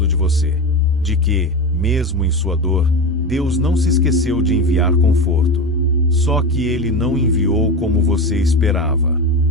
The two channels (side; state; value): both; normal; correlation 0.22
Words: de você. De que, mesmo em sua dor, Deus não se esqueceu de enviar conforto. Só que Ele não enviou como você esperava.